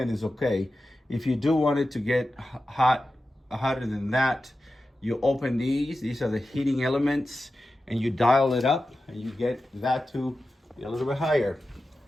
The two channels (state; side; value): normal; both; correlation 0.93